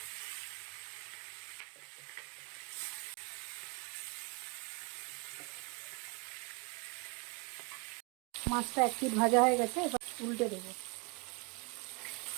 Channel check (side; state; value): left; quieter; 30.0 dB